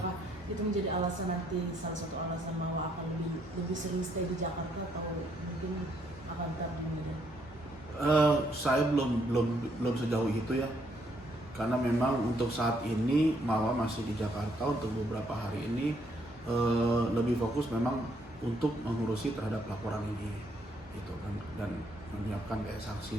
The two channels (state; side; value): normal; both; correlation 0.71